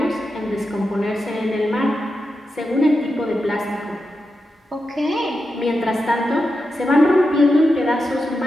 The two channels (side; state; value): both; normal; correlation 0.89